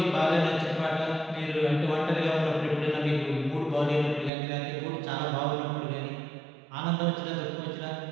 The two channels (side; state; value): left; drops out; at 4.3 s